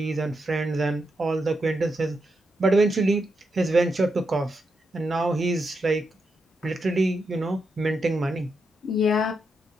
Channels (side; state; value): both; normal; correlation 0.84